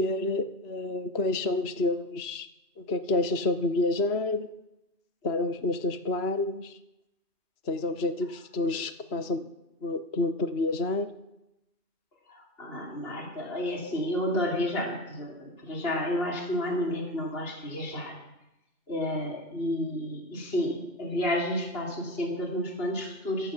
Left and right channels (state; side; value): late; right; 3.0 ms